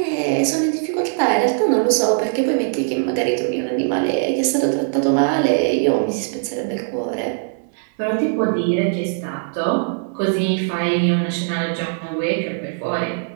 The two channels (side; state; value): left; silent; 65 dB below the other